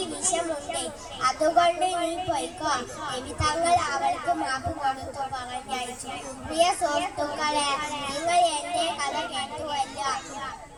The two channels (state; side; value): identical; both; correlation 1.00